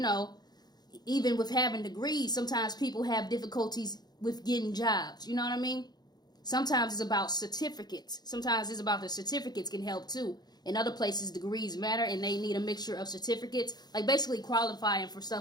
even with having degrees, sometimes people have difficulties with getting jobs. You know what I mean? Sometimes it's about certificates. Sometimes it's about the certificates can help too. In other places, degrees matter and they need a mixture of certificates. Like basically qualifying for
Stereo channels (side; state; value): right; late; 0.20 ms